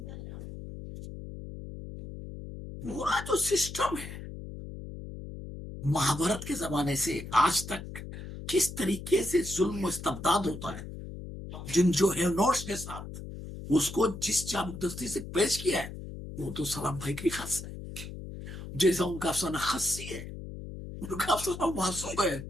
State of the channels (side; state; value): left; noise; hum, 10 dB below the sound